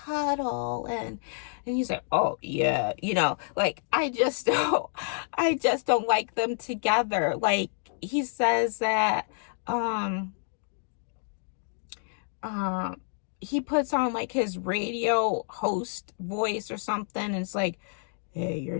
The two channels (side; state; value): right; silent; digital silence